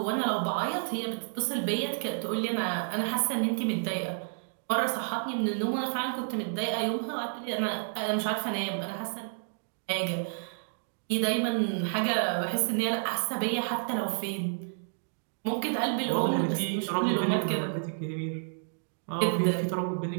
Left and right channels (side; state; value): left; silent; digital silence